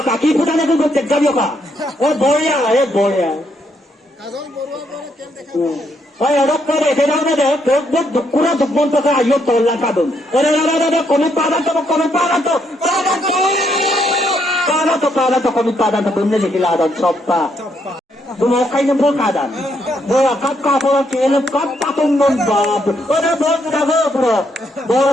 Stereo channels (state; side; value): normal; both; correlation 0.75